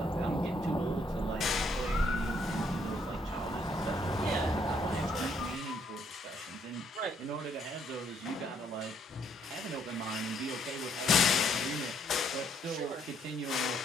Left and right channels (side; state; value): both; normal; correlation 0.69